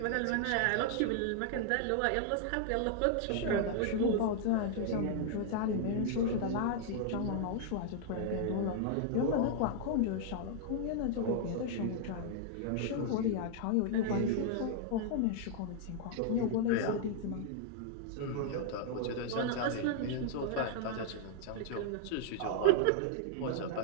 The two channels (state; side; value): different; both; correlation -0.01